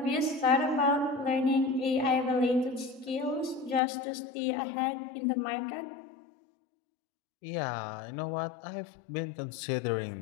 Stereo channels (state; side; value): drops out; right; at 3.8 s